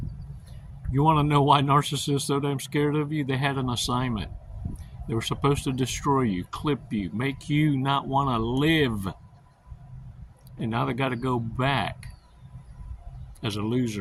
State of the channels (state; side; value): identical; both; correlation 1.00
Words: You want to know why narcissists are so damn scared of you? They had an assignment. They were supposed to destroy you, clip you, make you not want to live. And now they got to go back as a